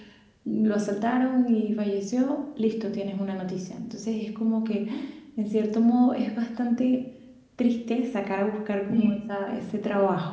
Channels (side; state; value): both; identical; correlation 1.00